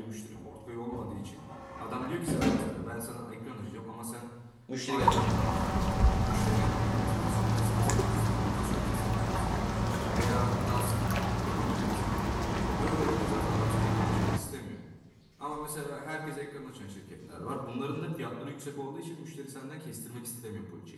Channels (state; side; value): identical; both; correlation 1.00